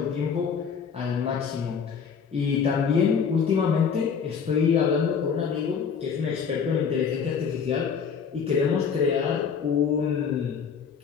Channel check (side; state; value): right; quieter; 6.5 dB